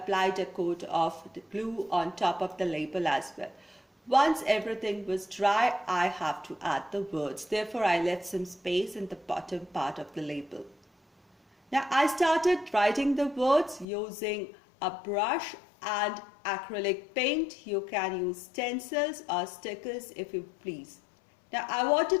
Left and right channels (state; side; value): drops out; right; at 13.9 s